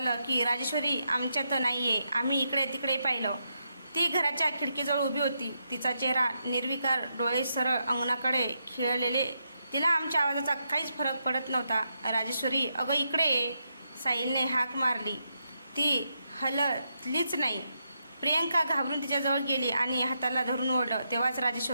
की राजेश्वरी आमच्यात नाही आहे. आम्ही इकडे तिकडे पाहिलं. ती घराच्या खिडकीजवळ उभी होती. तिचा चेहरा निर्विकार, डोळे सरळ अंगणाकडे खिळलेले. तिला आमच्या आवाजाचा काहीच फरक पडत नव्हता. राजेश्वरी, अगं इकडे ये, साहिलने हाक मारली. ती हललीच नाही. प्रियंका घाबरून तिच्याजवळ गेली आणि हाताला धरून ओढलं. तेव्हाच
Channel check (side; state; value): both; inverted; correlation -0.82